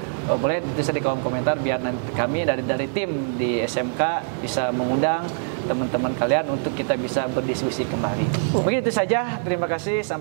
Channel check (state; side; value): silent; left; digital silence